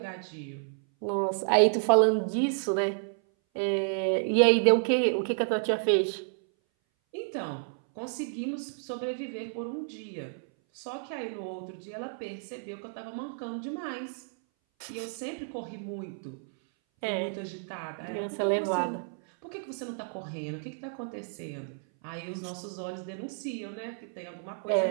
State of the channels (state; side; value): silent; left; 57 dB below the other